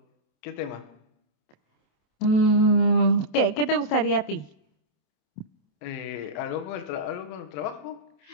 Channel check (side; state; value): right; late; 27 ms